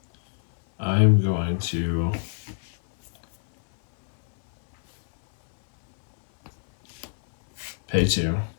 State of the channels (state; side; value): silent; right; digital silence